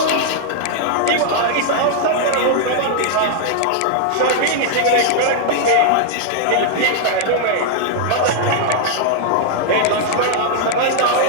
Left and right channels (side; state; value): both; different; correlation -0.01